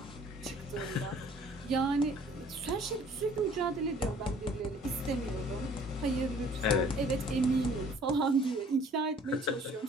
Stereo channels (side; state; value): both; normal; correlation 0.55